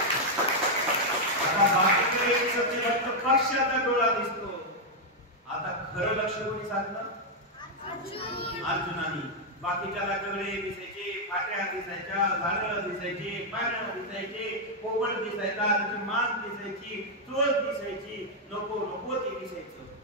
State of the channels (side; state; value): both; normal; correlation -0.02